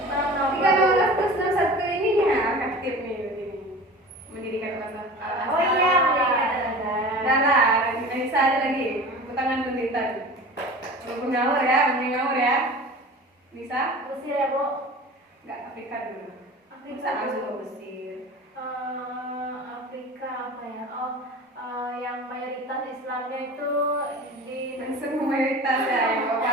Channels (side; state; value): both; normal; correlation 0.37